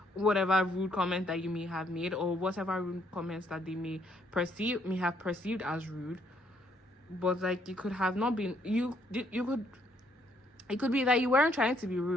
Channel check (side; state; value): both; normal; correlation 0.69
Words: whatever rude comment that you may have made, or whatever rude comments that they may have perceived as rude. But like you could have not been, it could be that you weren't trying to be